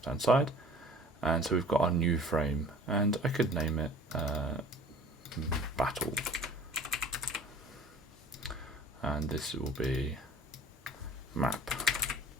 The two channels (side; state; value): both; normal; correlation 0.46